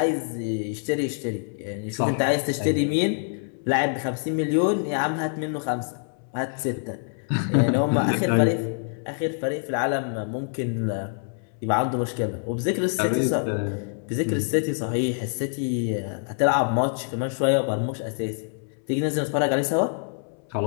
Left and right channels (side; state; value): right; silent; 61 dB below the other